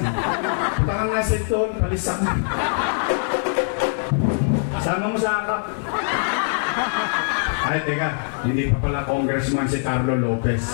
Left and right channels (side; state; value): right; silent; digital silence